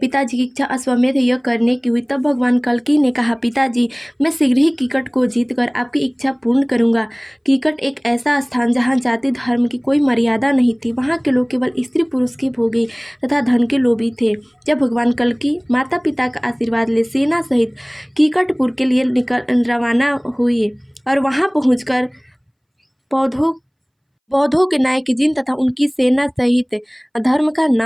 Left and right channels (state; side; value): identical; both; correlation 1.00